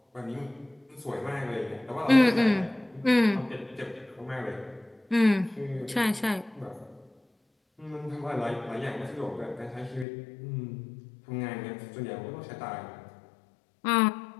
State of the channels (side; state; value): right; drops out; at 10.1 s